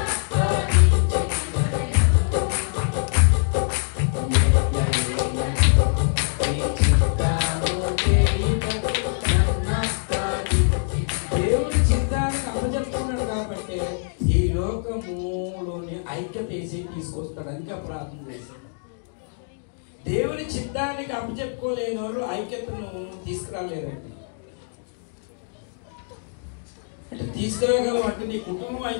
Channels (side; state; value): right; silent; digital silence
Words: ఐక్యత వేసి తీసుకొస్తాడు. అందుకే ప్రార్థన చేశాడు. దేవుని చిత్తానికి అప్పచెప్పుకోలేని వాళ్ళు ఐక్యతను తీసుకురాలేరండి. అంటే తీసుకురాగలం అంటే నీ కుటుంబం